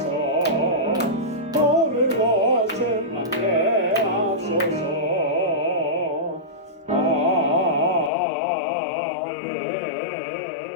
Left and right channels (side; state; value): right; drops out; at 8.1 s